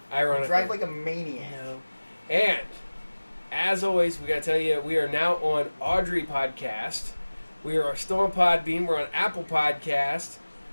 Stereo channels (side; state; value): both; inverted; correlation -1.00